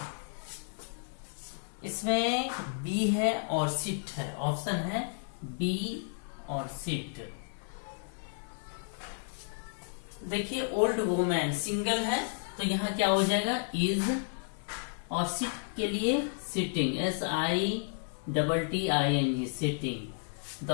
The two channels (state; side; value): silent; right; 56 dB below the other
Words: इसमें बी है और सिट है, ऑप्शन है बी और सिट। देखिए ओल्ड वुमेन सिंगल है तो यहां क्या हो जाएगा, इज, और सिट के लिए sitting, SITTING, sitting. The